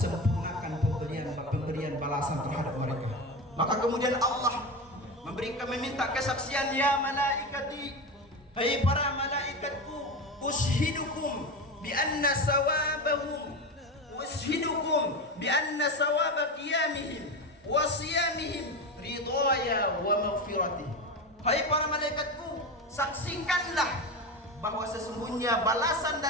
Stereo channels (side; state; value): both; normal; correlation 0.21